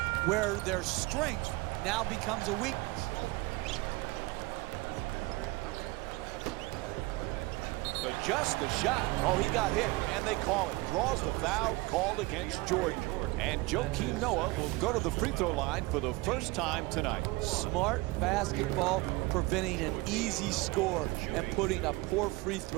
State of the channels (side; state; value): left; quieter; 22.5 dB